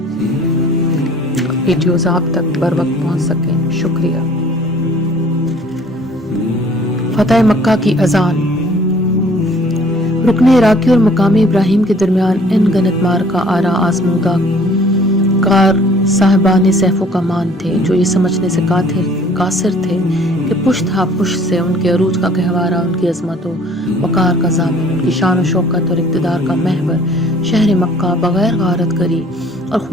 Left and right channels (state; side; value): normal; both; correlation 0.55